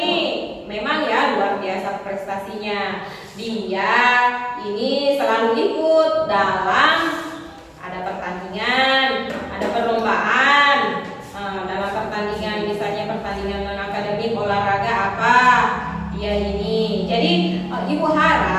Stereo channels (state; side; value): identical; both; correlation 1.00